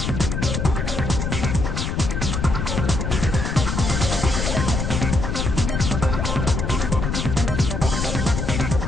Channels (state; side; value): noise; left; rumble, 1 dB below the sound